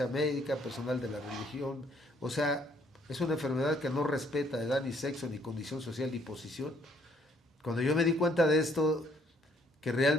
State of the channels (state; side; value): normal; both; correlation 0.65